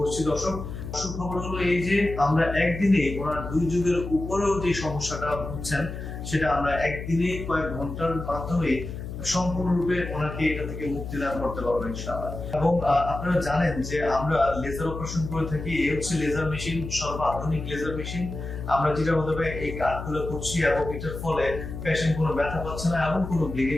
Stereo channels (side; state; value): left; noise; hum, 8 dB below the sound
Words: দর্শক, সুখবর হলো এই যে আমরা একদিনে ওনার 2 যুগের উপরেও যে সমস্যাটা ভুগছেন সেটা আমরা একদিনে কয়েক ঘন্টার মাধ্যমে সম্পূর্ণরূপে ওনাকে এটা থেকে মুক্তি দান করতে পারবো ইনশাআল্লাহ। এবং আপনারা জানেন যে আমরা লেজার অপারেশন করে থাকি। এই হচ্ছে লেজার মেশিন, সর্বাধুনিক লেজার মেশিন। আমরা যেটা মাধ্যমে এই কাজগুলো করছি এবং এটার ফলে পেশেন্ট কোনো ব্যথা পাচ্ছে না এবং কোনো ব্লিডিং